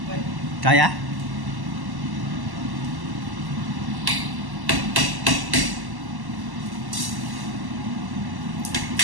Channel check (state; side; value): late; left; 1.1 ms